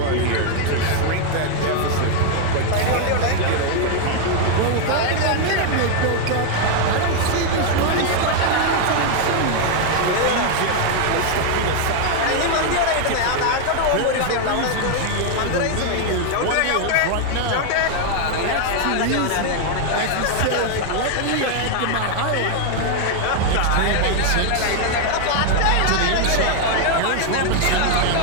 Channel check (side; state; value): both; different; correlation 0.00